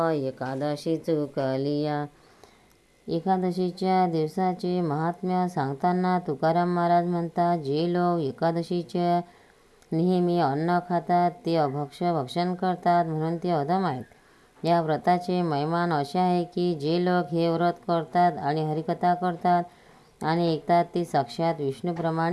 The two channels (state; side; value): identical; both; correlation 1.00